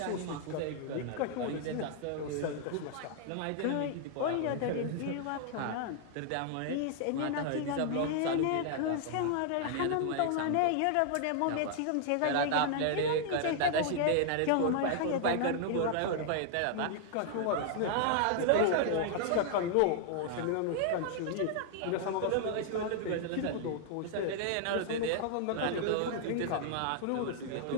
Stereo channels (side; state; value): both; different; correlation 0.00